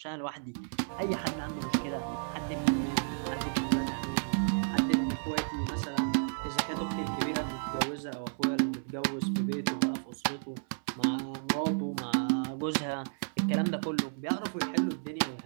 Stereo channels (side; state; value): left; silent; 56 dB below the other